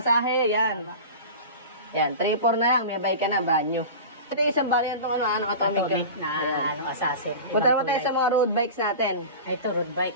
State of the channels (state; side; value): inverted; both; correlation -0.32